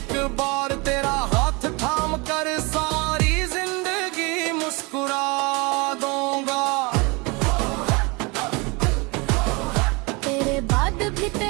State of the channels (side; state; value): left; quieter; 27.9 dB